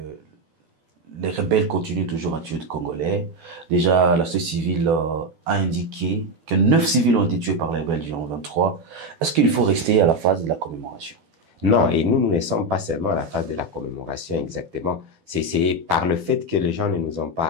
les rebelles continuent toujours à tuer des Congolais. Déjà, la société civile a indiqué que 9 civils ont été tués par les rebelles du 23. Est-ce qu'il faut rester à la phase de la commémoration? Non, et nous ne sommes pas seulement à la phase de la commémoration exactement. C'est par le fait que les gens ne nous ont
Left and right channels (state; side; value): late; left; 12 ms